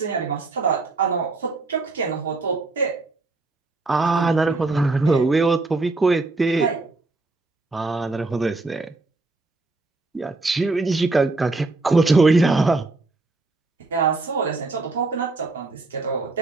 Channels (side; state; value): left; quieter; 3.3 dB